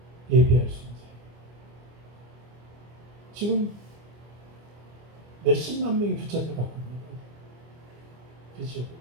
예배할 수 있는 자예요. 지금 몇십만 명이 붙잡혀 갖고 있는 거예요. 그렇죠?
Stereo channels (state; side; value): late; left; 25 ms